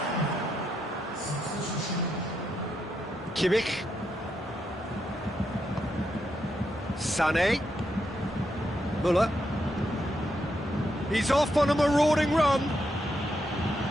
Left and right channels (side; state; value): both; normal; correlation 0.81